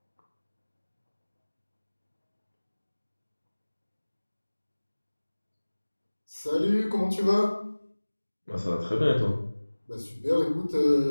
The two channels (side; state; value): both; inverted; correlation -1.00